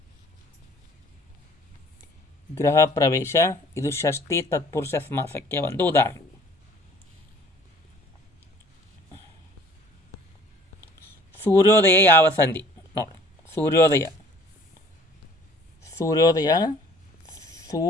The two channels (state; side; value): normal; both; correlation 0.53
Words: ಗೃಹ ಪ್ರವೇಶ ಇದು ಷಷ್ಠಿ ತತ್ಪುರುಷ ಸಮಾಸಕ್ಕೆ ಒಂದು ಉದಾಹರಣೆ. ಸೂರ್ಯೋದಯ ಯಾವ ಸಂಧಿ? ನೋಡಿ, ಸೂರ್ಯೋದಯ ಸೂರ್ಯೋದಯ